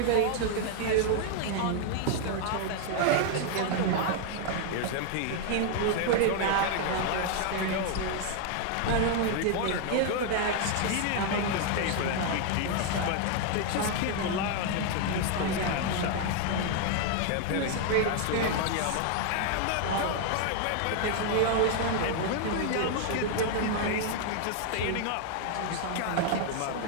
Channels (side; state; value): both; different; correlation 0.00